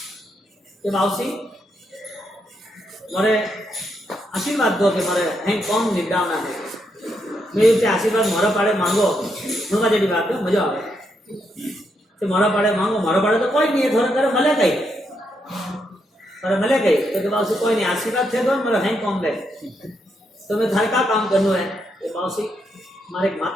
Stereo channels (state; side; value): normal; both; correlation 0.79